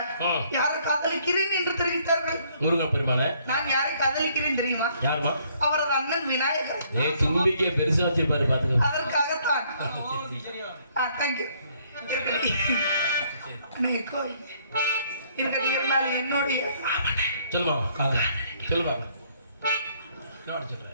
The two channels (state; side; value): inverted; both; correlation -0.66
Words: யாரை காதலிக்கிறேன் என்று தெரிவித்தார்கள். முருகன் பெருமானே. நான் யாரை காதலிக்கிறேன் தெரியுமா? யாருமா? அவரது அண்ணன் விநாயகர். தும்பிக்கே பெருசா வச்சிருப்பாரு பாத்துக்கோ. அதற்காகத்தான் என்னுடைய சொல்லுமா சொல்லுமா சொல்ற